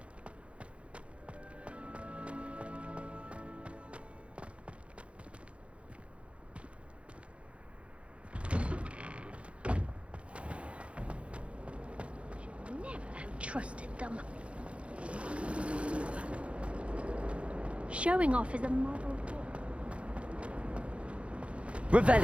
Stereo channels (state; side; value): late; left; 0.061 ms